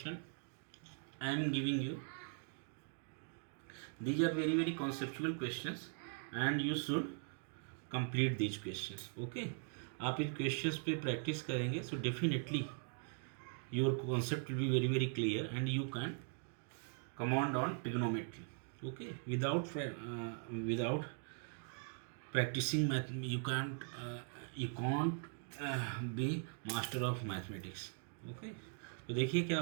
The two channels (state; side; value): silent; left; 51 dB below the other